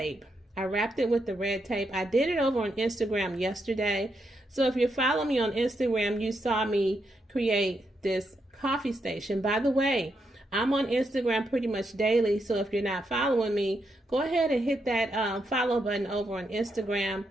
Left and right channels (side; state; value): both; normal; correlation 0.81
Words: I wrapped it with the red tape. I did it over on Instagram yesterday. So if you follow me on Instagram, you saw me create this coffee station. By the way, I'm on Instagram pretty much daily, so if you're not following me, go ahead and hit that follow button over on Instagram.